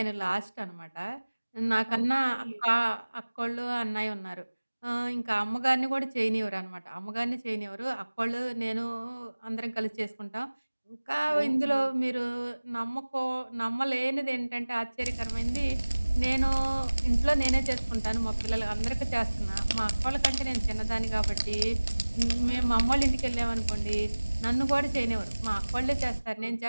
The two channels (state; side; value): inverted; both; correlation -1.00